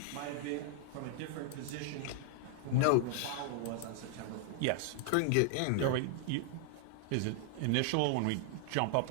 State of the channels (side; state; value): both; different; correlation 0.00